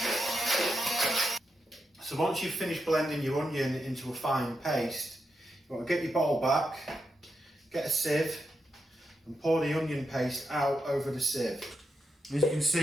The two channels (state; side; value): normal; both; correlation 0.85